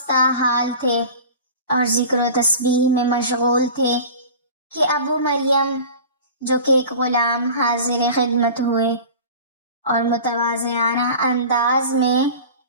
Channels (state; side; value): inverted; both; correlation -0.37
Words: حال تھے اور ذکر و تسبیح میں مشغول تھے کہ ابو مریم جو کہ ایک غلام حاضر خدمت ہوئے اور متواضعانہ انداز میں